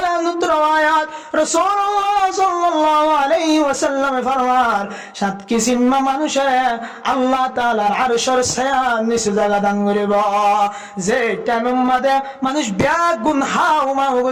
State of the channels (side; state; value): both; identical; correlation 1.00